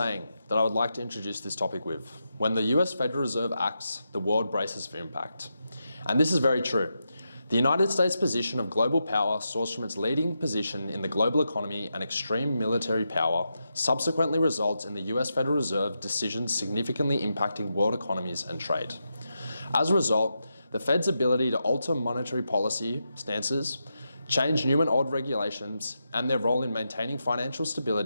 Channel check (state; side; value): inverted; both; correlation -0.86